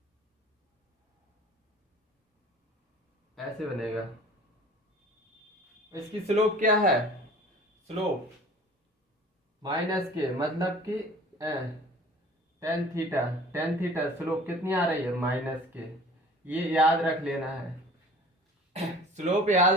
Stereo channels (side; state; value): both; normal; correlation 0.46